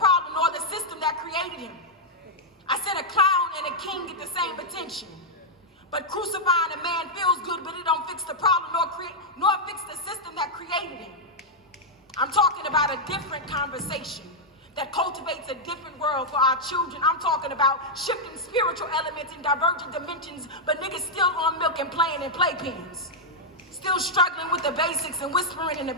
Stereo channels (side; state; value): both; normal; correlation -0.04